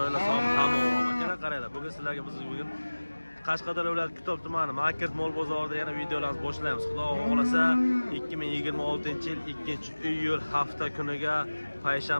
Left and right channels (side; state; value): both; inverted; correlation -1.00